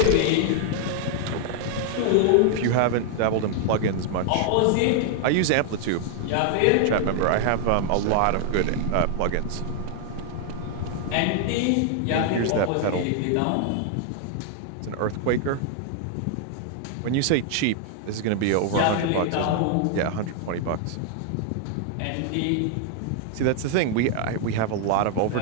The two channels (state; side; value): different; both; correlation 0.00